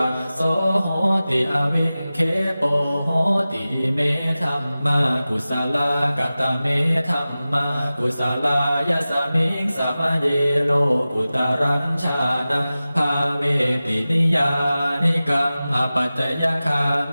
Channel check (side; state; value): both; inverted; correlation -0.96